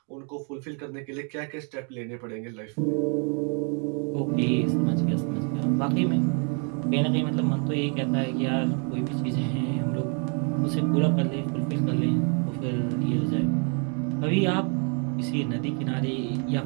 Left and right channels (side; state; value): left; quieter; 38.3 dB